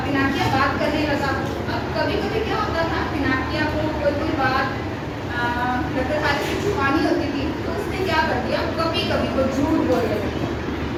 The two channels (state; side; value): identical; both; correlation 1.00